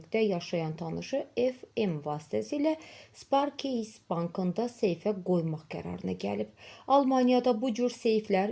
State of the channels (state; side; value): identical; both; correlation 1.00